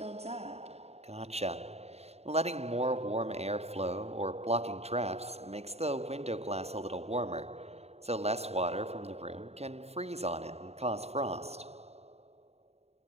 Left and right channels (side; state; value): left; late; 0.30 ms